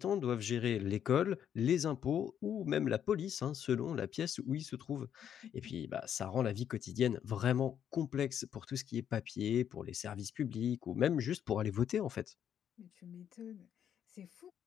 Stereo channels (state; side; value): quieter; right; 9.2 dB